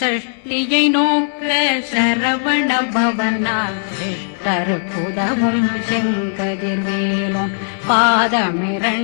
நோக்க சரவண பவனா கருப்புதவும் செங்கதிர் மேலும்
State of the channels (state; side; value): silent; right; digital silence